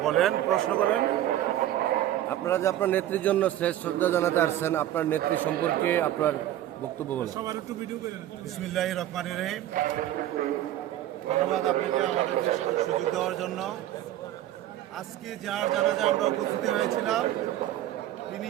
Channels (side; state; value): left; quieter; 13.0 dB